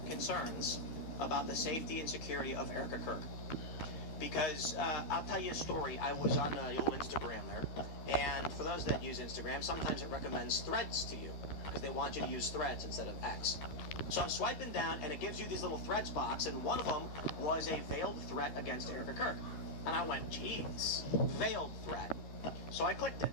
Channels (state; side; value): late; right; 13 ms